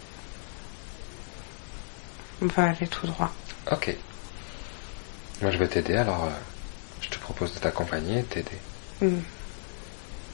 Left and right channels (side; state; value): right; silent; digital silence